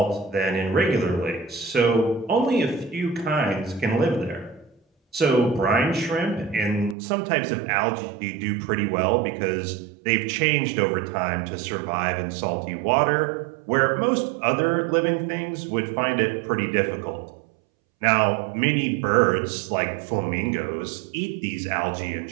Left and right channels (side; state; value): left; drops out; at 7.0 s